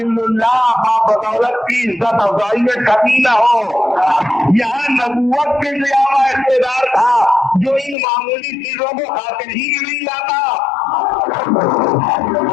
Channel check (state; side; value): drops out; right; at 8.0 s